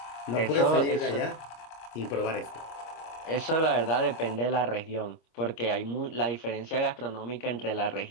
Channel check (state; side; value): late; right; 25 ms